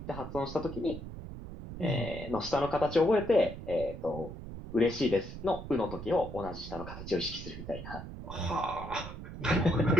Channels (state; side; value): noise; right; rumble, 10 dB below the sound